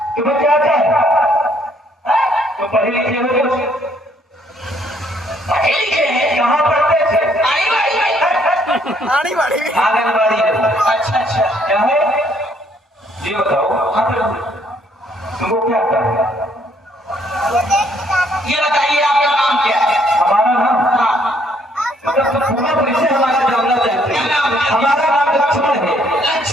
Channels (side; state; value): both; normal; correlation 0.66